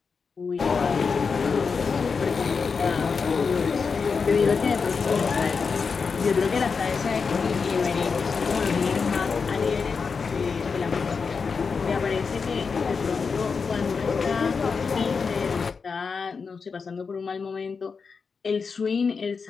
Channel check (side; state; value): right; quieter; 5.3 dB